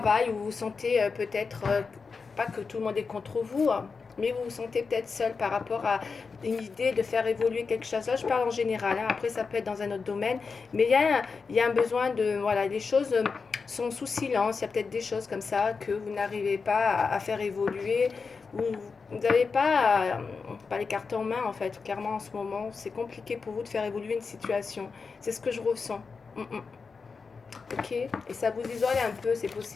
où vous vous sentez peut-être, pas que tout le monde est contre vous, hein, mais vous vous sentez peut-être seul par rapport à une idée de faire évoluer quelque chose. Là, je parle en général, hein. Après ça peut être dans un autre domaine, mais il y a un besoin de, voilà, les choses sont sous silence, il y a peut-être des choses comme ça que vous n'arrivez pas à faire évoluer, vous n'avez pas les cartes en main en fait, clairement en ce moment, c'est compliqué pour vous de faire évoluer une situation, c'est ce que je ressens. Ok, et ça vous isole un peu, c'est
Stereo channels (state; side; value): quieter; right; 4.9 dB